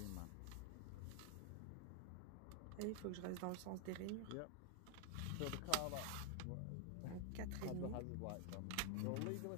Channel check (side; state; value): both; different; correlation 0.00